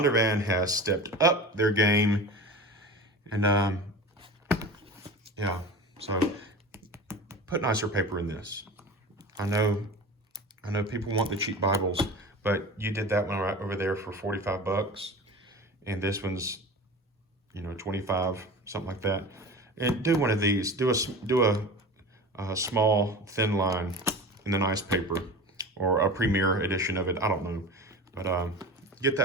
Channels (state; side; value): normal; both; correlation 0.33